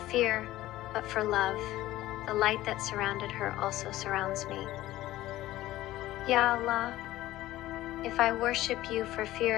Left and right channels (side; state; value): right; quieter; 15.7 dB